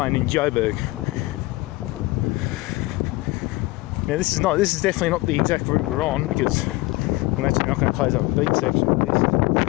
in Joburg. Now, this is definitely not the exact route we're on, because I'm actually not going to close up the beach section of this.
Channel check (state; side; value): quieter; right; 21.2 dB